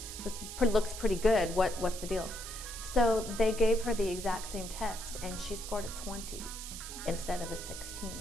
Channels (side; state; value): right; noise; hiss, 9 dB below the sound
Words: looks pretty good. What's the deal? So they gave her the exact same test, and she scored a 20 instead of a 16,